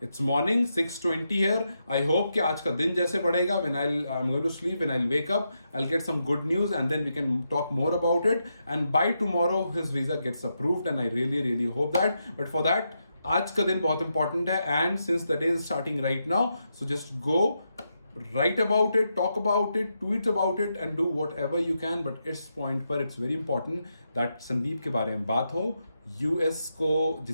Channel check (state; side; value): inverted; both; correlation -0.84